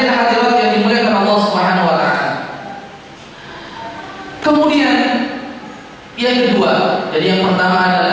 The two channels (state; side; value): identical; both; correlation 1.00